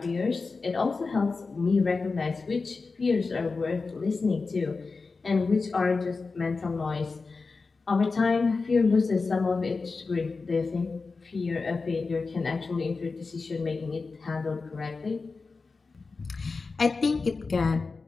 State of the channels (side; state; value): right; quieter; 4.2 dB